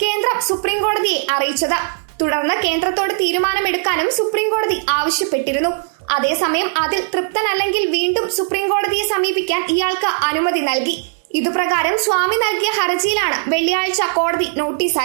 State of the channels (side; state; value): left; silent; digital silence